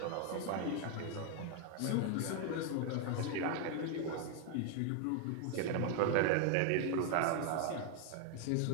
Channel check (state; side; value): different; both; correlation 0.00